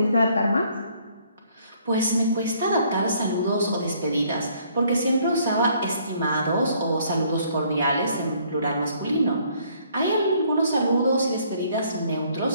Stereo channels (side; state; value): both; inverted; correlation -0.63